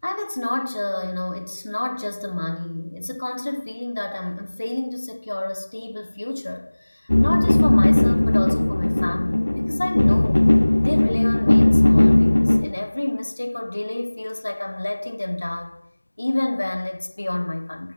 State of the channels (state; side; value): inverted; both; correlation -1.00